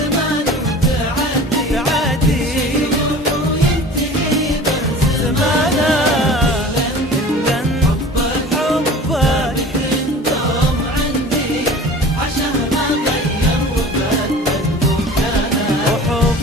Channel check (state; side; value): normal; both; correlation 0.41